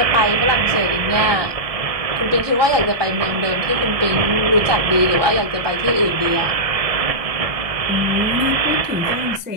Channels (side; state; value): left; late; 1.2 ms